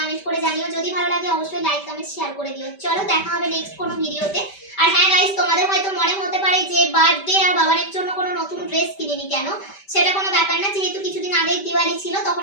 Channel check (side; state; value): right; late; 5.1 ms